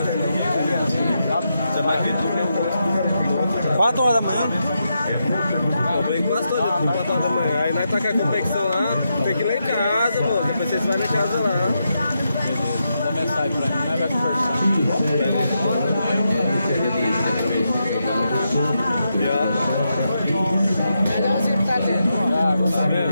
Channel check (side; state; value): both; inverted; correlation -0.84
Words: Você vai vir do 4 horas da manhã? Eu venho quase todo dia, 4 horas da manhã. Aí nós tá com a competição lá, tem que ir lá em casa, pô. Depois vocês vão em casa lá. Manda mensagem pra mim, nós vai conversar.